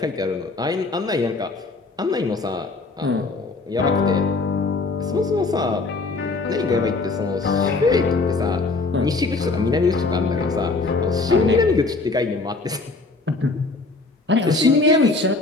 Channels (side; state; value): right; quieter; 3.6 dB